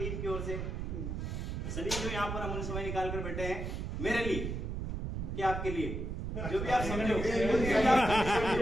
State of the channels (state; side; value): noise; right; rumble, 3 dB below the sound